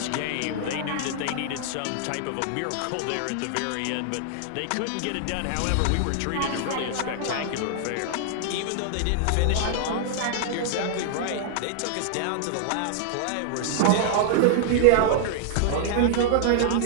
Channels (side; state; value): both; different; correlation 0.00